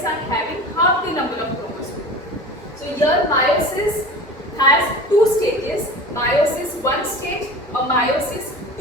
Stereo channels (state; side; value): normal; both; correlation 0.35